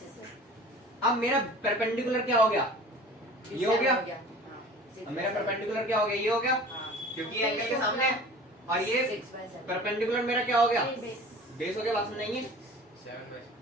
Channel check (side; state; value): both; normal; correlation 0.42